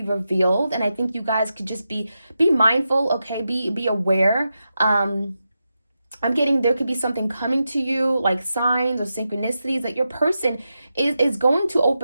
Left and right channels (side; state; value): both; inverted; correlation -0.89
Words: revealed, and I think you guys could just be mindful, okay? Be aware. I'm getting there could be something coming to you, like signs or synchronicities, that your person is going to